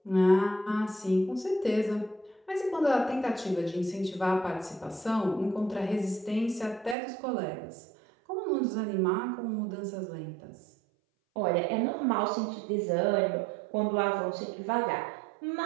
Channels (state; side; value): drops out; left; at 7.0 s